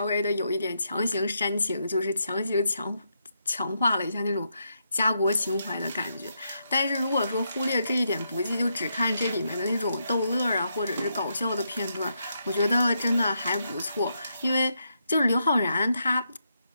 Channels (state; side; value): inverted; both; correlation -0.81